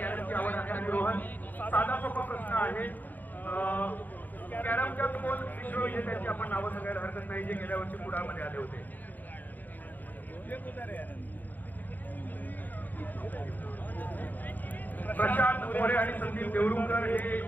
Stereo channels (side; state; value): right; late; 0.086 ms